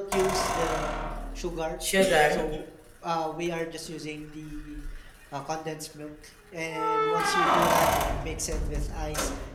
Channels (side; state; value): both; identical; correlation 1.00